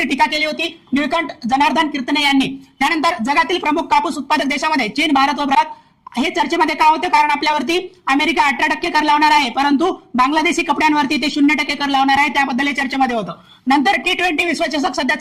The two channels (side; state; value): both; identical; correlation 1.00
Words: टीका केली होती निळकंठ जनार्दन कीर्तने यांनी। त्यानंतर जगातील प्रमुख कापूस उत्पादक देशामध्ये चीन, भारत व भारत हे चर्चेमध्ये का होतं कारण आपल्यावरती अमेरिका 18% कर लावणार आहे परंतु बांगलादेशी कपड्यांवरती ते 0% कर लावणार आहे त्याबद्दल चर्चेमध्ये होतं। नंतर T20 विश्वचषक सध्या